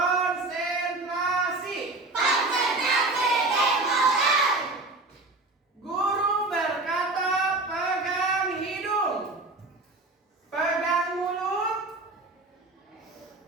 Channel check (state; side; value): quieter; left; 3.1 dB